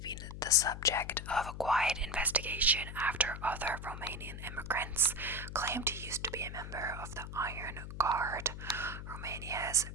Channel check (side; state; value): left; noise; hum, 9 dB below the sound